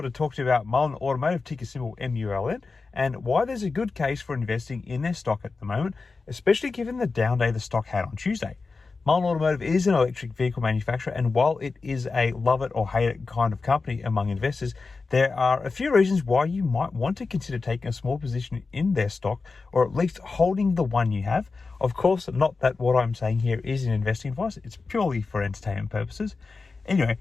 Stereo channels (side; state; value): right; quieter; 4.2 dB